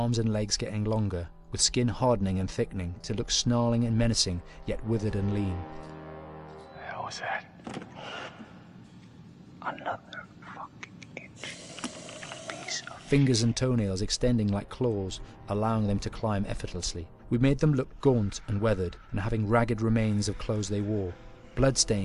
and legs getting longer, with skin hardening and thickening to look snarling and menacing, yet withered and lean. What the hell was that? Another fucking piece of... Fingers and toenails extending like claws, allowing them to climb effortlessly. We made them look gaunt and weathered, and having ragged remains of clothes they wore,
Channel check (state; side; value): identical; both; correlation 1.00